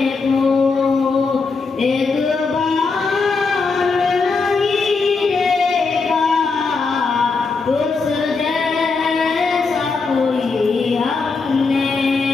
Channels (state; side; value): quieter; right; 4.4 dB